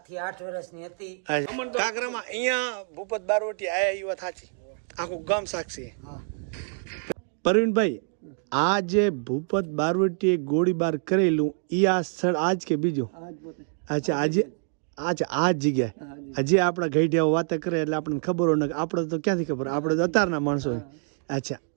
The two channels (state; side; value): silent; left; 55 dB below the other